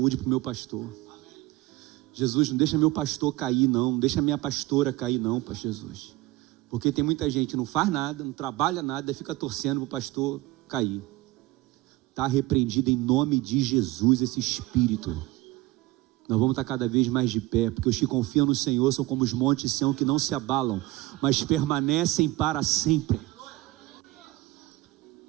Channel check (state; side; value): quieter; left; 18.4 dB